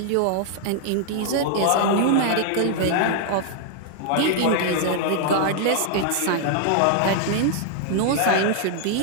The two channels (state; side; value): different; both; correlation 0.00